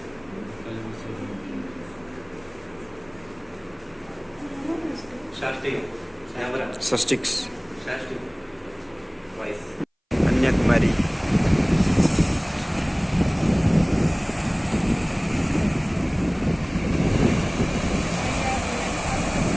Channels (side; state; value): both; identical; correlation 1.00